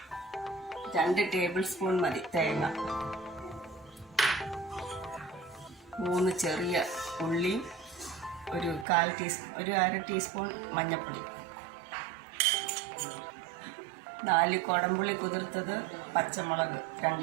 2 ടേബിൾ സ്പൂൺ മതി തേങ്ങ, 3 ചെറിയ ഉള്ളി, ഒരു അര ടീസ്പൂൺ മഞ്ഞൾപ്പൊടി, 4 കുടംപുളി കുതിർത്തത്, പച്ചമുളക്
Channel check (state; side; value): drops out; left; at 8.8 s